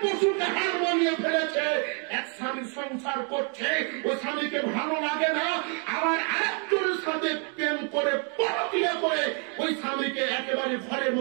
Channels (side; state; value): left; quieter; 39.4 dB